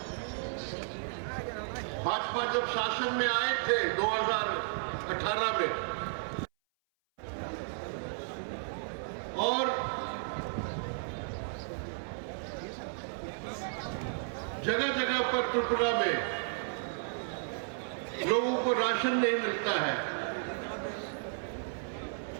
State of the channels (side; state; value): left; silent; 55 dB below the other